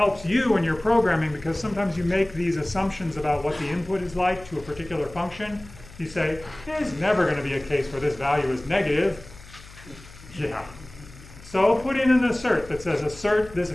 you in your programming because sometimes you make these assumptions about what the input is like to a particular function. You say, there's never going to be a case where this value is negative. Yeah. So put in an assert that says assert this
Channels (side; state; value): left; noise; hum, 19 dB below the sound